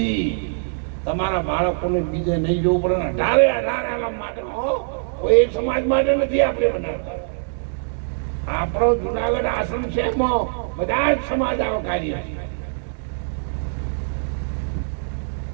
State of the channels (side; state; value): left; silent; digital silence